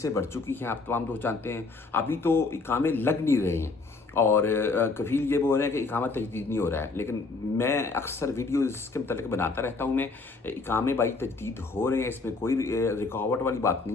बढ़ चुकी हैं, आप तमाम दोस्त जानते हैं। अभी तो इकामे लग नहीं रहे हैं और कफील ये बोल रहे हैं कि इकामा तजदीद नहीं हो रहा है, लेकिन मैं अक्सर वीडियो इसके मतलब बनाता रहता हूँ। मैं इकामे भाई तजदीद हो रहे हैं, इसमें कोई रुकावट वाली बात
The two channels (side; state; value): right; quieter; 3.9 dB